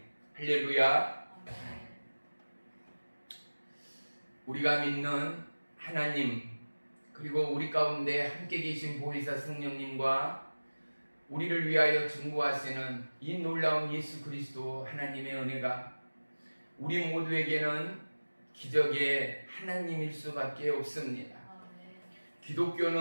할렐루야. 우리가 믿는 하나님, 그리고 우리 가운데 함께 계신 보혜사 성령님과 우리를 위하여 증거하시는 이 놀라운 예수 그리스도 하나님의 은혜가 우리 모두에게는 기적의 하나님일 수밖에 없습니다.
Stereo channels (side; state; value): both; inverted; correlation -1.00